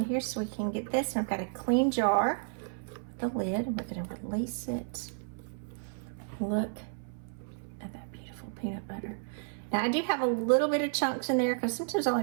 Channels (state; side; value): silent; left; 56 dB below the other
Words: here so we can get this. And I've got a clean jar with the lid. We're gonna release it. Look at that beautiful beautiful peanut butter. Now I do have a little bit of chunks in there because sometimes I